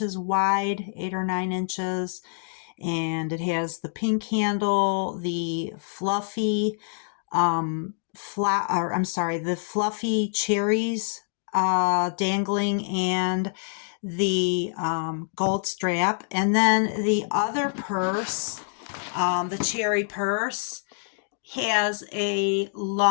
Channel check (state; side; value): silent; right; digital silence